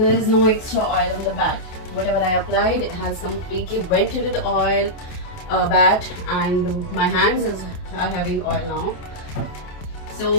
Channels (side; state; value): right; late; 28 ms